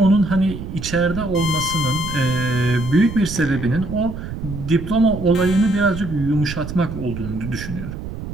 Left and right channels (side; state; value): right; noise; rumble, 9 dB below the sound